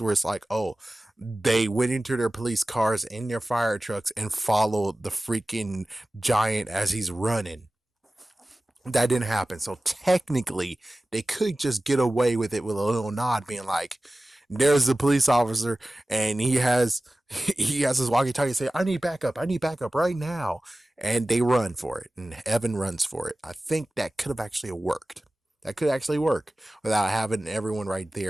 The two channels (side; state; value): both; normal; correlation 0.97